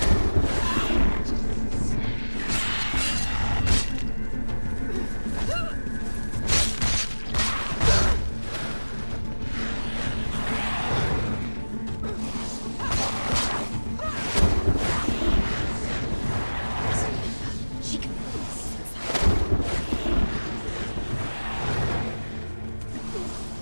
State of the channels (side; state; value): both; inverted; correlation -1.00